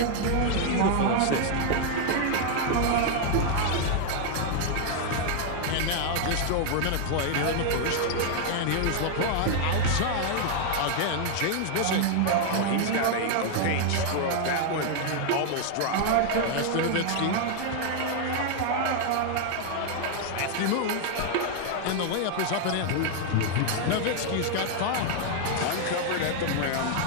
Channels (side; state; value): both; different; correlation 0.00